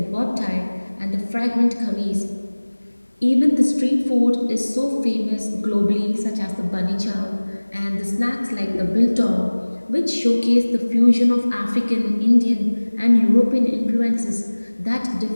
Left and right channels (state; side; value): inverted; both; correlation -1.00